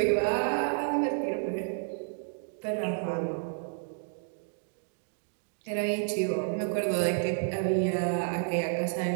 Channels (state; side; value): silent; left; digital silence